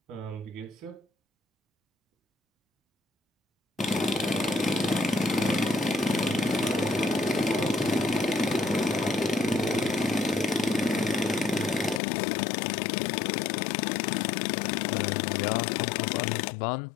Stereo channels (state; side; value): drops out; right; at 12.0 s